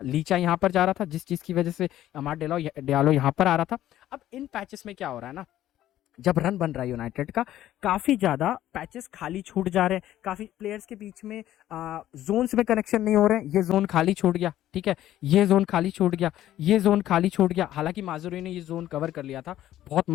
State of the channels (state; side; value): quieter; right; 13.1 dB